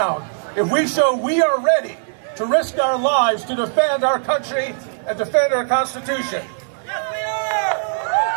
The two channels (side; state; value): left; silent; digital silence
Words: if we show we are ready to risk our lives to defend our country and defend our Constitution. Yes, we